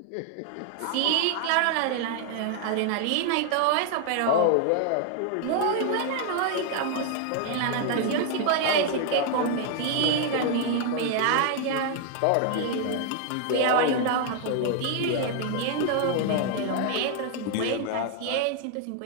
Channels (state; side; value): different; both; correlation 0.00